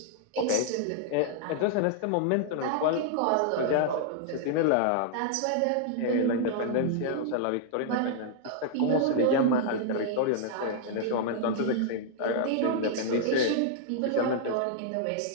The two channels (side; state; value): both; different; correlation -0.01